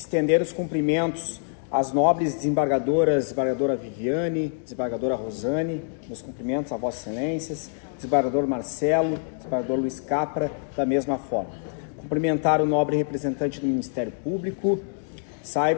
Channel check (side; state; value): right; silent; 61 dB below the other